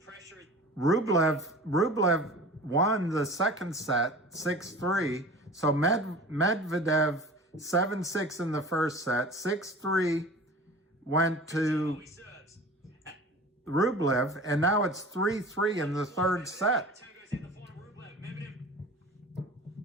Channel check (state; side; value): normal; both; correlation 0.39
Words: is... Rublev won the second set 6-3. So Medvedev 7-6 in the first set, 6-3 went to Rublev, and now it's 3-3 in the third set.